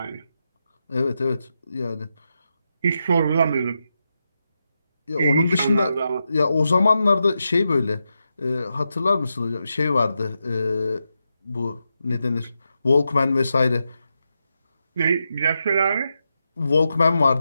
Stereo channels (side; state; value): both; inverted; correlation -0.87